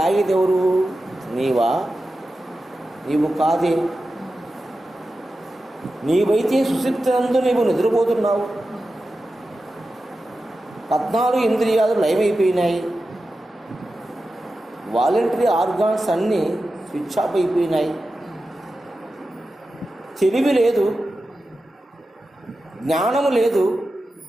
ఎవరు? నీవా? నీవు కాదే. నీవైతే సుషుప్తినందు నీవు నిద్రపోతున్నావు. 14 ఇంద్రియాలు లయమైపోయినాయి. వాలంటరీ ఆర్గాన్స్ అన్నీ స్విచ్ ఆఫ్ అయిపోయినాయి. తెలివి లేదు, జ్ఞానము లేదు,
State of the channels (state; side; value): normal; both; correlation 0.92